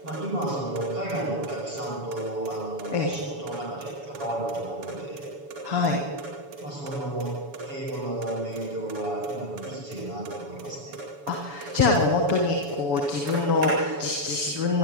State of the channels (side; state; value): left; late; 7.1 ms